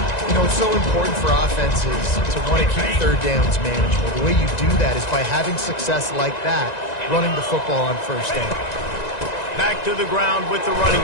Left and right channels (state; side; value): late; right; 1.9 ms